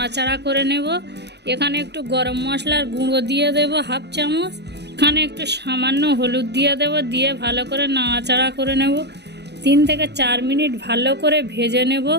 করে নেব। এখানে একটু গরম মশলার গুঁড়ো দিয়ে দেব 1/2 চামচ, এখানে একটু সামান্য হলুদ দিয়ে দেব, দিয়ে ভালো করে নাড়াচাড়া করে নেব। 3 থেকে 4 মিনিট ভালো করে ভেজে নেব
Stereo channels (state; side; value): late; left; 0.49 ms